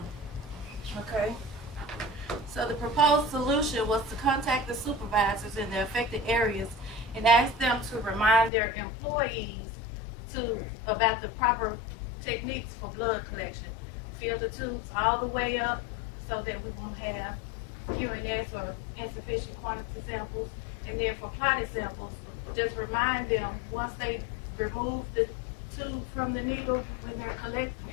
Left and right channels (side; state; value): right; drops out; at 8.5 s